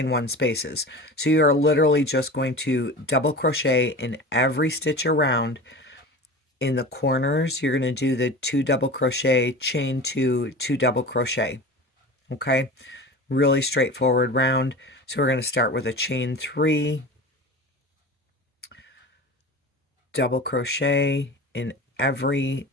1 spaces, so you are literally just going to double crochet in every stitch around. In the corners you're going to do the 2 double crochet, chain 2, 2 double crochet. Okay, really straightforward round. So we're going to start with a chain 3, double crochet in every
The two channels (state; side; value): normal; both; correlation 0.34